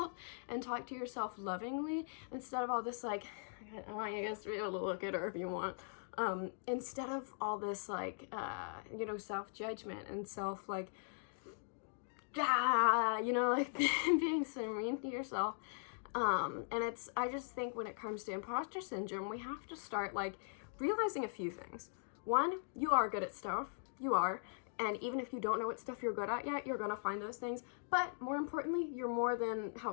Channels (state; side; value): silent; right; digital silence